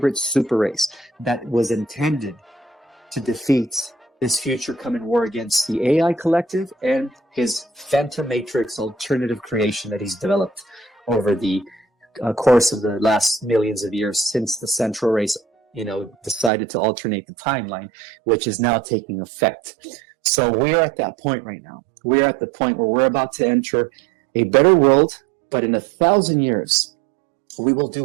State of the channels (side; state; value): left; drops out; at 16.5 s